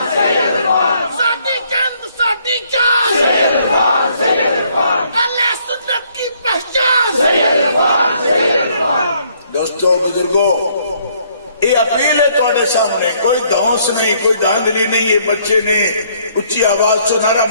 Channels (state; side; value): inverted; both; correlation -0.66